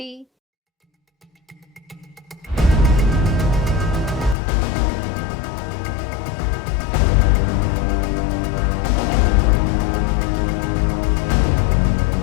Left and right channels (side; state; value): right; drops out; at 4.4 s